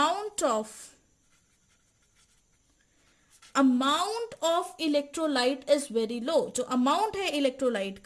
amount of electrolyte is very low. जो अमाउंट है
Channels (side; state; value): both; identical; correlation 1.00